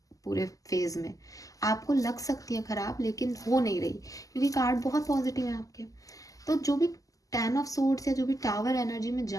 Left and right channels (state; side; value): late; right; 0.17 ms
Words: पूरे फेज में, आपको लग सकती है खराब लेकिन हो नहीं रही, क्योंकि कार्ड बहुत पॉजिटिव है आपके। तो जो भी 10 ऑफ सोर्ड्स या जो भी टावर एनर्जी में